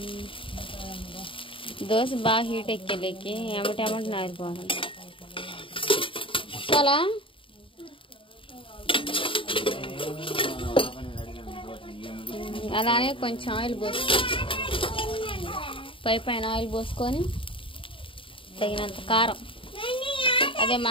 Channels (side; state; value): right; late; 0.25 ms